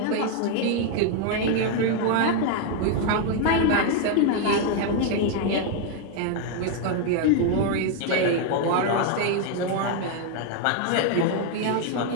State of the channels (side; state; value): both; different; correlation 0.01